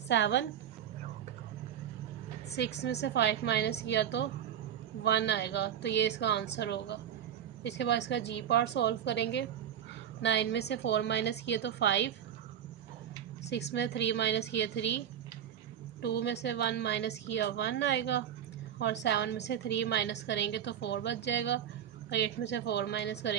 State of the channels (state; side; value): quieter; left; 9.5 dB